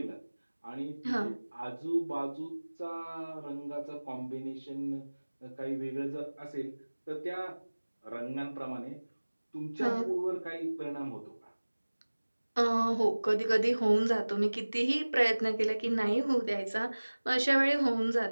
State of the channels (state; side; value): inverted; both; correlation -1.00